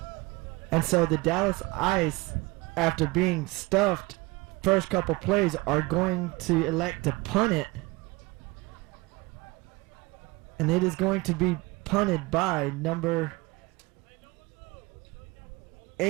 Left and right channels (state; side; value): quieter; left; 23.0 dB